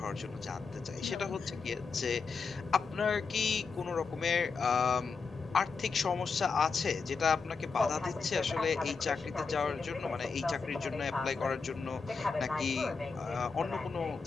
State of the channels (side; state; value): right; quieter; 4.9 dB